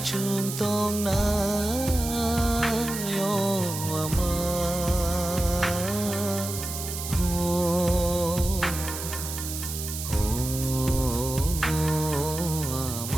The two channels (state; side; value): noise; right; hiss, 7 dB below the sound